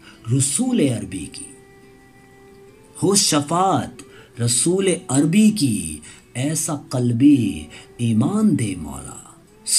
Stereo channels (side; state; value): both; identical; correlation 1.00